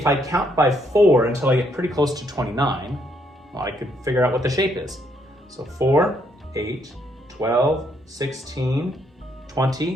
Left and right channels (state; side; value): normal; both; correlation 0.72